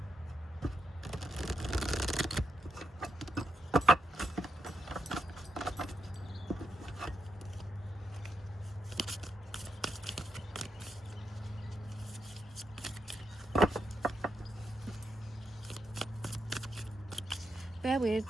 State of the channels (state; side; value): normal; both; correlation 0.84